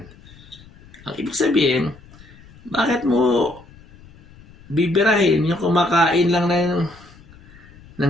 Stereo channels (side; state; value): left; noise; rumble, 23 dB below the sound